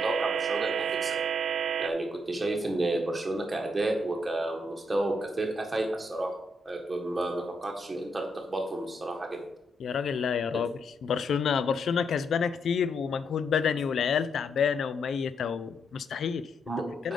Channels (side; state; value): both; normal; correlation 0.78